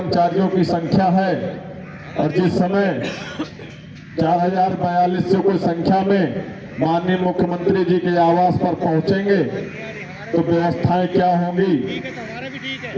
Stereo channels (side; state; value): both; identical; correlation 1.00